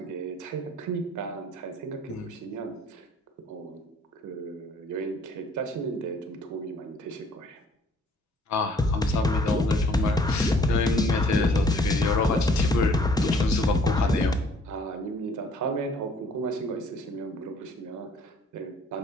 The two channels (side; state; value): both; normal; correlation 0.58